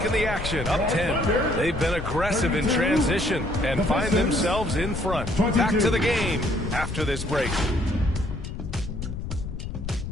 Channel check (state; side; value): noise; left; rumble, 6 dB below the sound